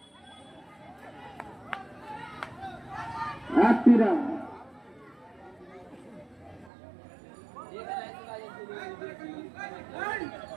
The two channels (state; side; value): drops out; left; at 6.7 s